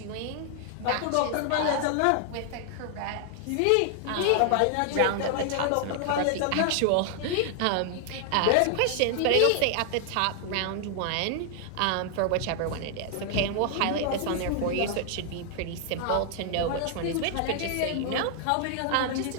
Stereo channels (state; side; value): different; both; correlation 0.00